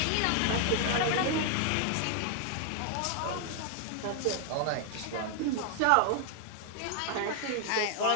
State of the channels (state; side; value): different; both; correlation 0.00